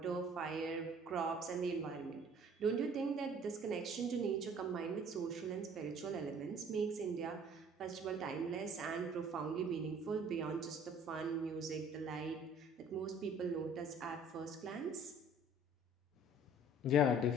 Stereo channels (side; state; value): both; normal; correlation 0.53